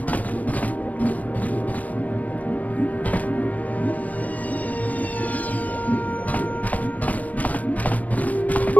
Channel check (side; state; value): right; late; 0.071 ms